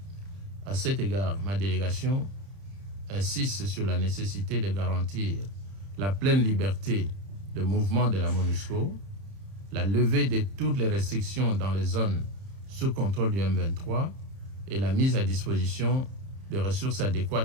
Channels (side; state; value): left; late; 31 ms